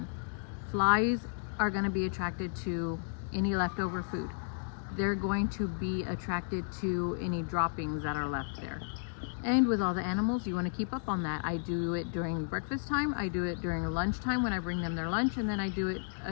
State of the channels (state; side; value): silent; right; digital silence